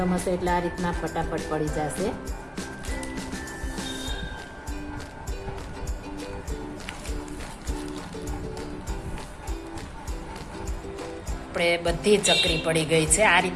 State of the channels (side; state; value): both; identical; correlation 1.00